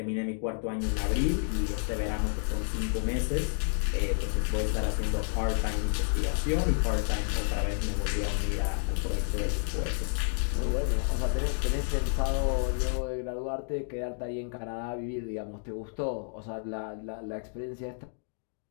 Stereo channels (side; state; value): right; silent; digital silence